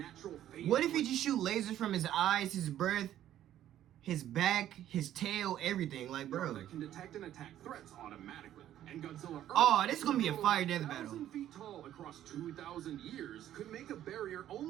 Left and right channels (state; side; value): quieter; left; 11.9 dB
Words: phase. What if he just shoot lasers from his eyes, his breath, his back, his tail, everything? Like, bro. That can detect and attack threats automatically. And Godzilla Earth, Oh, this is gonna be a fire death battle. 1,000 feet tall across 2,000 years, could make a barrier